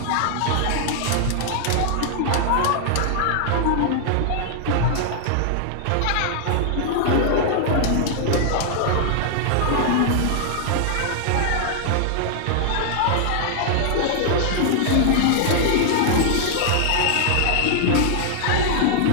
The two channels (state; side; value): different; both; correlation -0.01